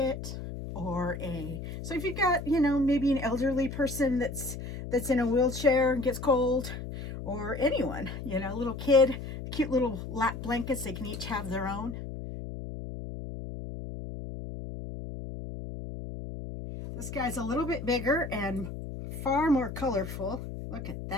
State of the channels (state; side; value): noise; left; hum, 8 dB below the sound